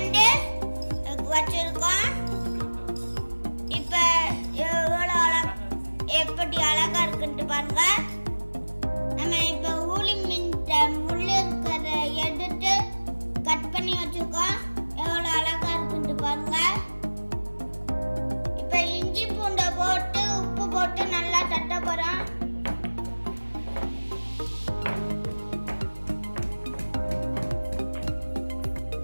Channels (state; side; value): inverted; both; correlation -1.00